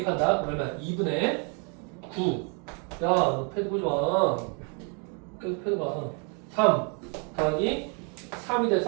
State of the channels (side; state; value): left; quieter; 36.8 dB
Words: 얼마야? 2분의 9. 야, 너 패드 보지 마. 계속 패드 봐. 3 더하기 3이